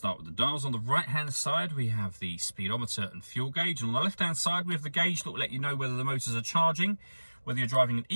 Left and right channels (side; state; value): both; inverted; correlation -1.00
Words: with the dials. On the right-hand side, we have the speedometer and fuel gauge. And on the left-hand side, we have the gauge that will let you know whether the motors are charging, whether you're driving in